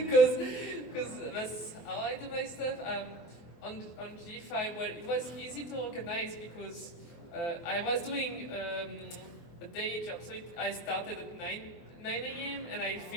that's how I do my stuff. On G5, well, it was easy to organize because I was doing a day job. So I started at 9 a.m. and I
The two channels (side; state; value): right; late; 23 ms